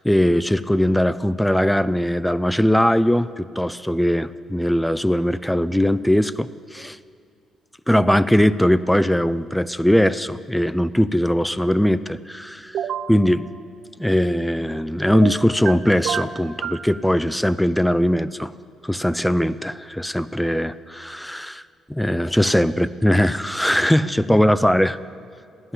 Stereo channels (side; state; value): both; normal; correlation 0.98